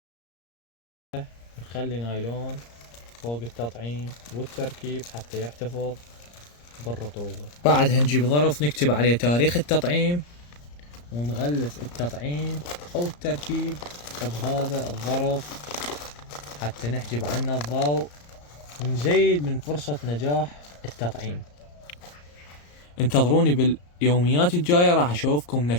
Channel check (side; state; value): right; late; 34 ms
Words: نخلي نايلون فوق التطعيم والتركيب حتى يحتفظ بالرطوبة. بعدها نجيب ظرف نكتب عليه تاريخ التطعيم، ونغلف التطعيم او التركيب بهذا الظرف حتى نحجب عنه الضوء ونزيد من فرصة نجاح التطعيم. انتظروني باليوميات الجاية، راح اشوفكم